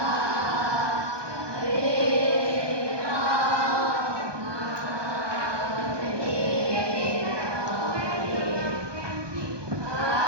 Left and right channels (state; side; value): late; left; 1.2 ms